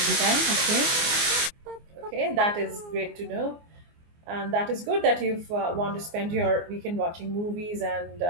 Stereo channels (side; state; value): left; late; 24 ms